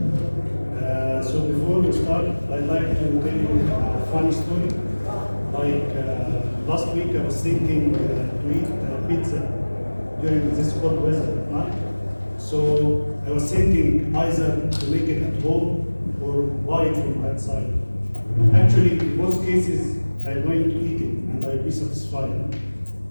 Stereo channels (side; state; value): both; inverted; correlation -1.00